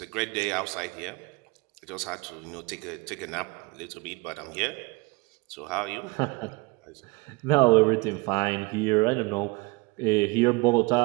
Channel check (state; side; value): quieter; left; 26.1 dB